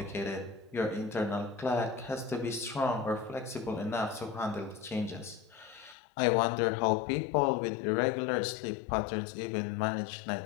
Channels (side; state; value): right; drops out; at 6.0 s